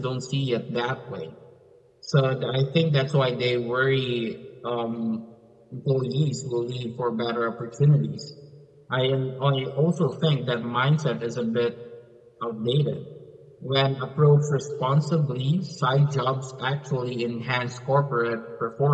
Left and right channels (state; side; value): identical; both; correlation 1.00